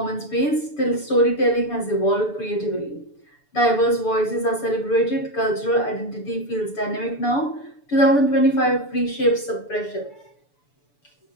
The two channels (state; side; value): late; right; 6.9 ms